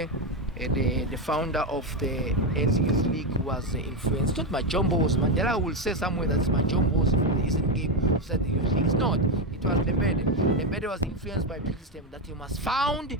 the founder of the ANC Youth League, who was influenced. Not Majombos. Mandela will say somewhere that's Majombos from the Eastern-Cape who said the Youth League. It's not. It was Lembede. Lembede was influenced by Peter's statement that he must found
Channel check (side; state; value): both; normal; correlation 0.10